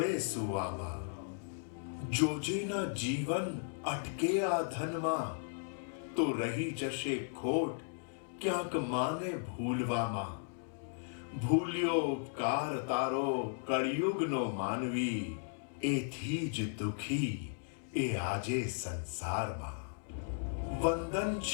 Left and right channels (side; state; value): right; silent; digital silence